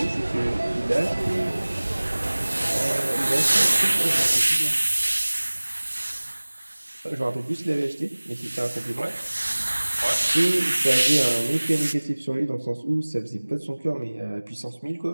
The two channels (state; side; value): inverted; both; correlation -1.00